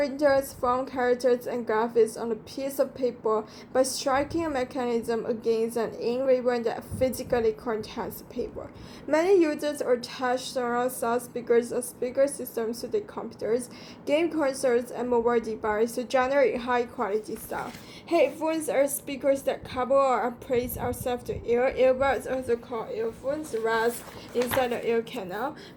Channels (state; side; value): identical; both; correlation 1.00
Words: form characters and graphics on a piece of paper by striking a mechanism against an ink ribbon that physically contacts the paper. Many users attach surround sound speakers or speaker systems to their computers, game consoles, and mobile devices to generate high-quality sound. Headphones are speakers that couple or are placed outside the ear. Earbuds, also called earphones, rest inside the ear canal.